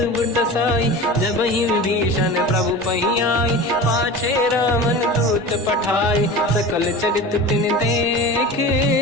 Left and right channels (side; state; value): both; normal; correlation 0.33